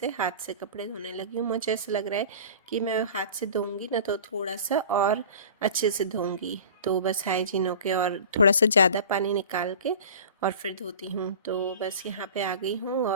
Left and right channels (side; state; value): both; inverted; correlation -0.39